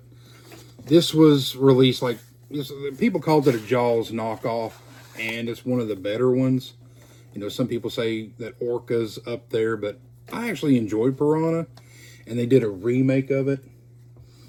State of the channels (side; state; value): both; identical; correlation 1.00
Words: this was released people called it a Jaws knockoff, and it's one of the better ones. Some people say that Orca's up there, but I actually enjoyed Piranha, and they did a remake of it,